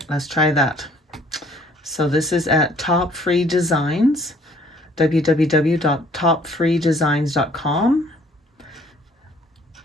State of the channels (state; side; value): normal; both; correlation 0.59